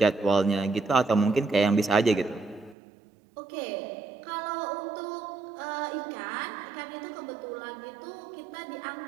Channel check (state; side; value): drops out; left; at 2.8 s